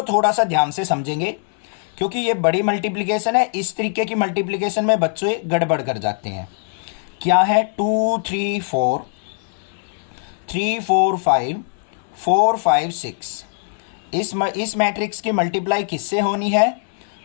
थोड़ा सा ध्यान से समझेंगे क्योंकि ये बड़ी मल्टीप्लिकेशन है। इस तरीके की मल्टीप्लिकेशन में बच्चे गड़बड़ कर जाते हैं। क्या है? 2 3 4 3 4 5 4 5 6। इस मैट्रिक्स की मल्टीप्लाई किससे होनी है?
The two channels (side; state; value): right; silent; 65 dB below the other